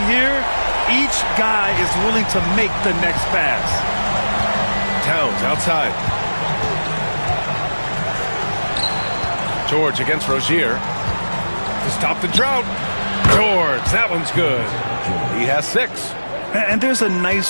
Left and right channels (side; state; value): both; inverted; correlation -1.00